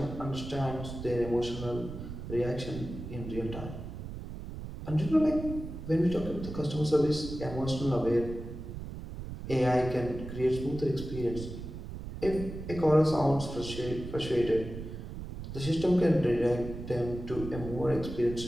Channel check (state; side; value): noise; right; rumble, 9 dB below the sound